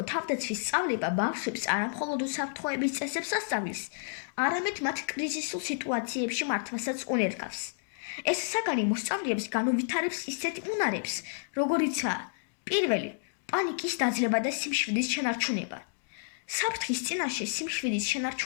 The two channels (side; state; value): right; silent; digital silence